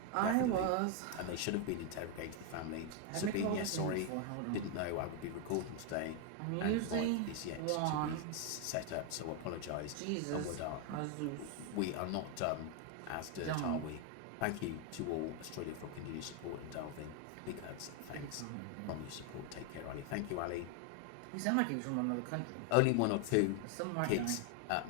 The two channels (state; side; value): different; both; correlation 0.01